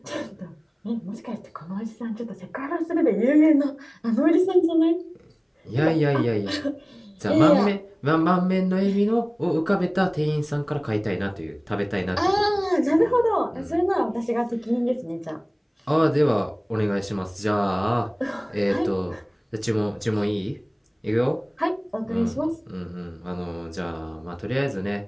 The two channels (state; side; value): identical; both; correlation 1.00